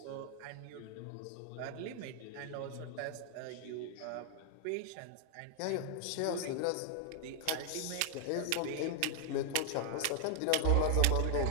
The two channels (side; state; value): both; different; correlation 0.00